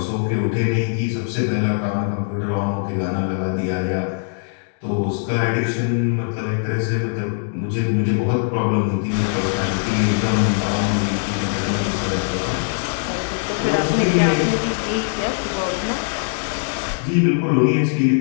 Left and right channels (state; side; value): silent; right; 65 dB below the other